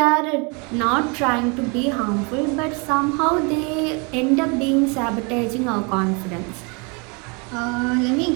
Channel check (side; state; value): left; quieter; 31.8 dB